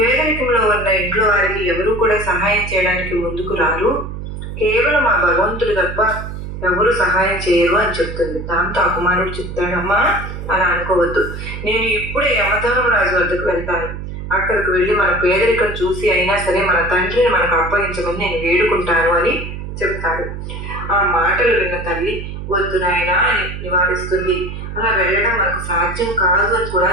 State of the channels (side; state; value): right; noise; hum, 8 dB below the sound